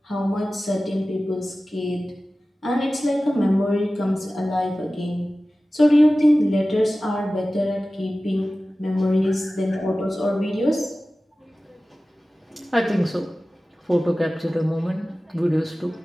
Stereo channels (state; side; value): normal; both; correlation 0.96